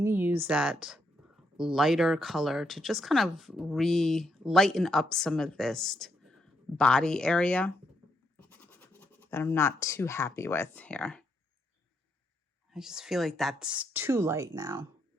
to use that lighter color to just kind of lighten up some of this body area that I'm not too happy with here. I just feel like that's too light now.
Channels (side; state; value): both; normal; correlation 0.77